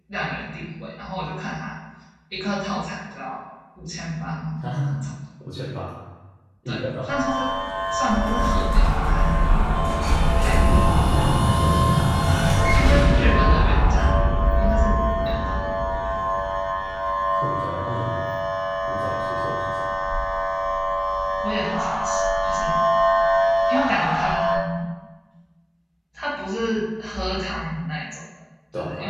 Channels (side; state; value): both; identical; correlation 1.00